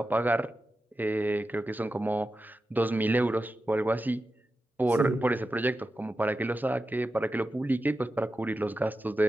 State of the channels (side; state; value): both; normal; correlation 0.91